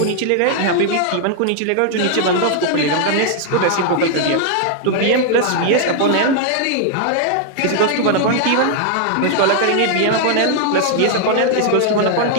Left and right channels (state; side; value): different; both; correlation 0.00